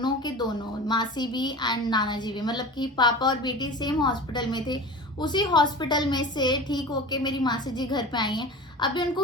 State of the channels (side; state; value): both; normal; correlation 0.34